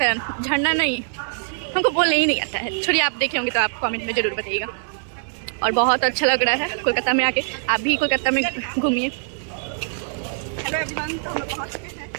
हैं, झरना नहीं, हमको बोलने ही नहीं आता है। छोड़िए, आप देखे होंगे तो आप कमेंट में ज़रूर बताइएगा। और बहुत अच्छा लग रहा है कोलकाता में आके। आप भी कोलकाता में घूमिए। हेलो एवरीवन, तो हम लोग पहुंच चुके हैं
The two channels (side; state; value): left; silent; digital silence